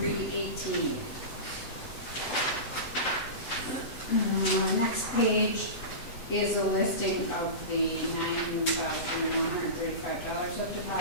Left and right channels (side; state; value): right; late; 7.9 ms